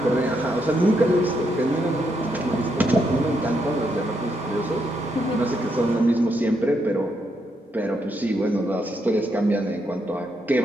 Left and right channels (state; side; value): normal; both; correlation 0.79